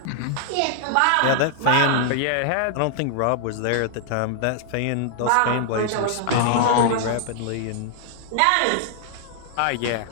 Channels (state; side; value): different; both; correlation -0.01